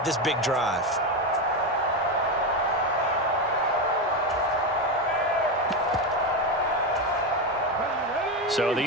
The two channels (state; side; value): normal; both; correlation 0.13